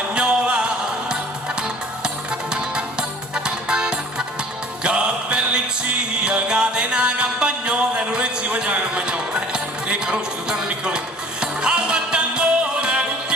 Catena campagnola, non è si mangia la campagnola, conosci, sono tanto piccolino. All'attangore,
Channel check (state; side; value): normal; both; correlation 0.48